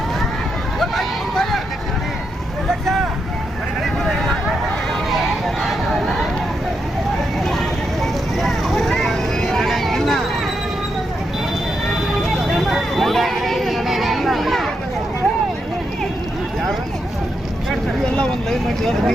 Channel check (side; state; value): both; normal; correlation 0.82